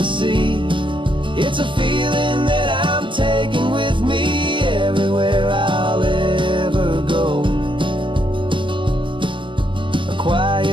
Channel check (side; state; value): left; late; 0.24 ms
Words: sea. It's a feeling that I'm taking with me everywhere I'll ever go. A